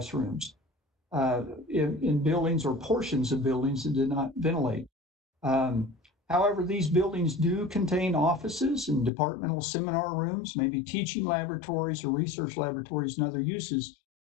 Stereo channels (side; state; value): right; drops out; at 9.1 s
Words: in buildings or portions of buildings that did not ventilate. However, these buildings do contain offices and departmental seminar rooms, maybe teaching laboratories or research laboratories and other uses.